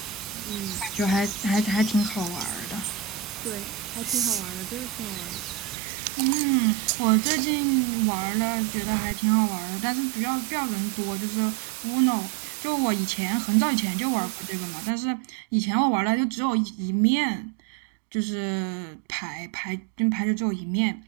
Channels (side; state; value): left; drops out; at 5.8 s